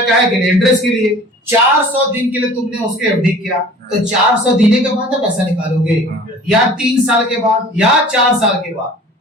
क्या के लिए, इंटरेस्ट के लिए। 400 दिन के लिए तुमने उसके एफडी किया, तो 400 दिन के बाद पैसा निकालोगे, या 3 साल के बाद या 4 साल के बाद,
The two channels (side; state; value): both; normal; correlation 0.46